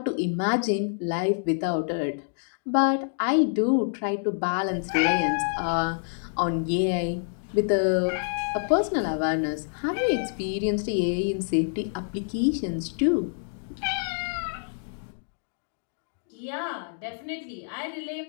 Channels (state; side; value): silent; right; digital silence